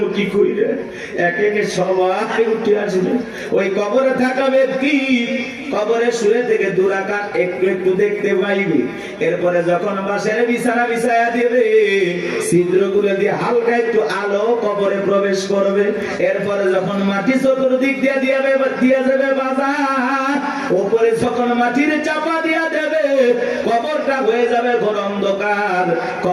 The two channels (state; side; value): identical; both; correlation 1.00